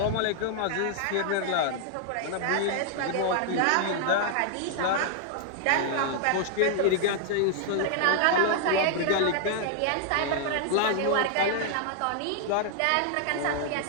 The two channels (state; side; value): different; both; correlation 0.00